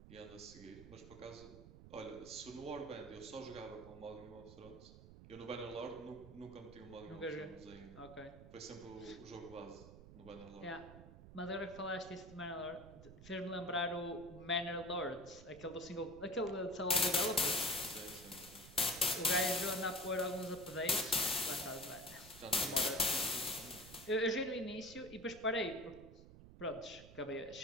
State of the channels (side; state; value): right; noise; rumble, 16 dB below the sound